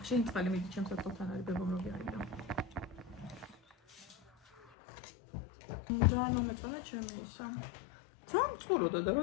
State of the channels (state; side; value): drops out; right; at 4.7 s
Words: შენი წყალი მიდი ჩემს ატყობთან არის ბებომრობი არის და. და ნუ მეწონა ჩემი ისა. თან წყუროდა და რო